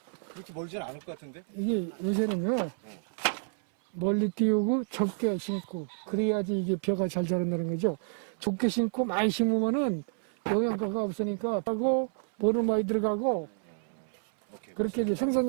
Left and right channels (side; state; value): left; silent; 58 dB below the other